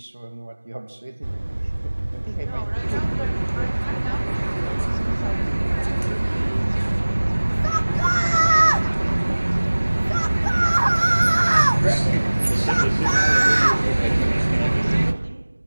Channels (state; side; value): inverted; both; correlation -1.00